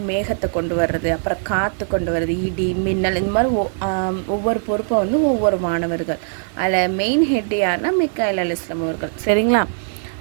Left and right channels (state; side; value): silent; left; digital silence